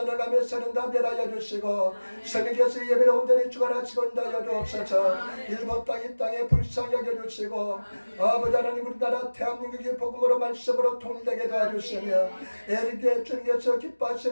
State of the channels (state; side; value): inverted; both; correlation -1.00